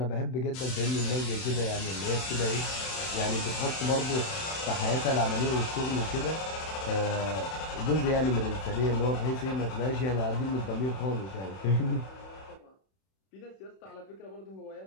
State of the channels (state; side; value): late; right; 31 ms